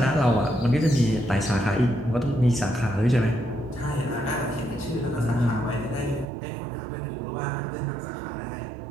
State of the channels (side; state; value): left; drops out; at 6.3 s